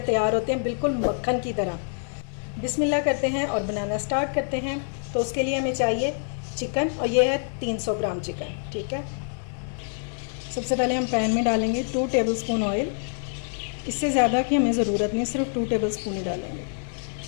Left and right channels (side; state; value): right; silent; 61 dB below the other